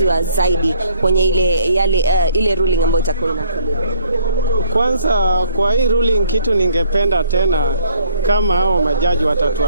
zaidi kwenye ile ruling ambayo itakuwa inatolewa? Kwanza kwa hii ruling kitu ningependa tena kama hao majaji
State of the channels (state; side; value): inverted; both; correlation -0.61